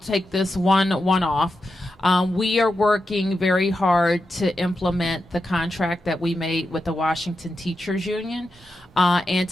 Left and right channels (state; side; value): normal; both; correlation 0.88